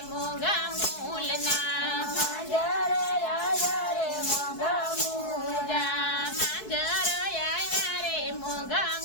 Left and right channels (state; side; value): late; right; 4.7 ms